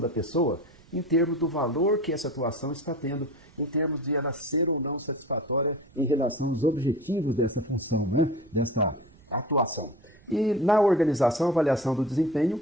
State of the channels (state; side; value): noise; right; rumble, 26 dB below the sound